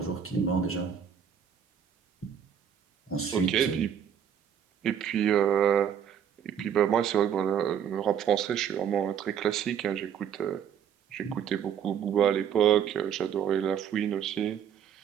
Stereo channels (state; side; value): quieter; left; 8.4 dB